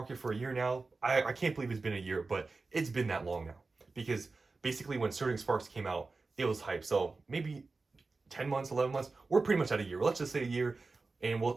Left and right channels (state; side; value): quieter; left; 3.8 dB